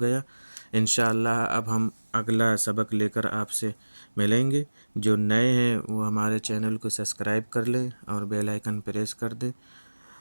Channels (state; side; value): inverted; both; correlation -1.00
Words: گیا۔ انشاءاللہ اب ہم اگلا سبق لے کر آپ سے ملیں گے۔ جو نئے ہیں وہ ہمارے چینل کو سبسکرائب کر لیں اور بیل آئیکن پریس کر دیں،